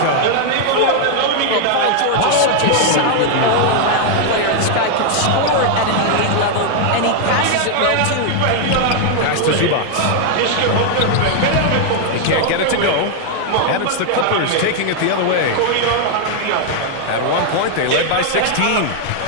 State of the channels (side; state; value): both; different; correlation 0.00